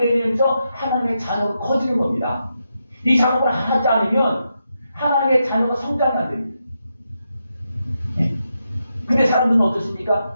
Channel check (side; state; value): both; inverted; correlation -0.85